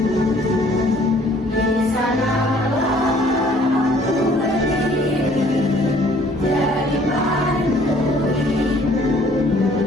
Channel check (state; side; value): normal; both; correlation 0.58